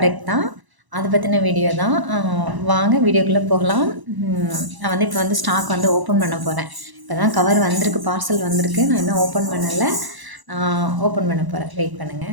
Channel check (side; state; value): left; late; 1.0 ms